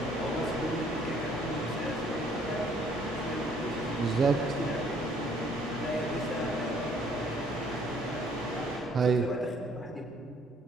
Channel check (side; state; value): both; normal; correlation 0.62